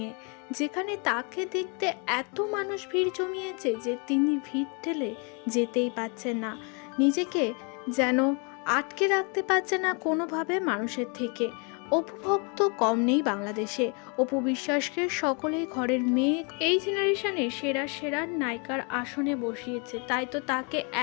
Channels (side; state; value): right; quieter; 34.7 dB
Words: যেখানে তাকে দেখতে এত মানুষ ভিড় জমিয়েছে যে তিনি ভিড় ঠেলে যেতেই পারছেন না, নিজেকে যেন আটকে রাখতে পারছে না কোনোভাবে মানুষের থেকে। অপু ভক্ত কম নেই বাংলাদেশে। অপু বিশ্বাসকে সকলেই ঘরের মেয়ে, এই জেনারেশনে সেরা সেরা নায়িকার আসনে বসিয়েছে। তাই তো তাকে